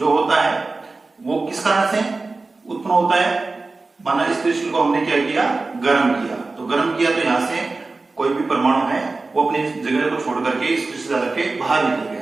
होता है वो किस कारण से उत्पन्न होता है? माना इस क्रिस्टल को हमने क्या किया? गर्म किया। तो गर्म किया तो यहां से कोई भी परमाणु है वो अपनी जगह को छोड़ करके इस क्रिस्टल जाल के बाहर निकल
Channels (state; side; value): quieter; left; 3.6 dB